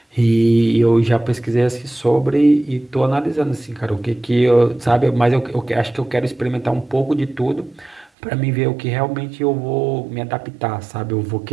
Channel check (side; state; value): left; drops out; at 8.1 s